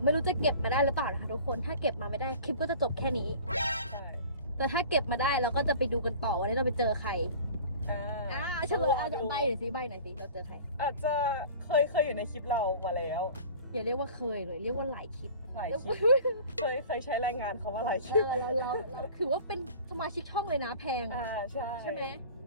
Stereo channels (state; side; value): inverted; both; correlation -0.42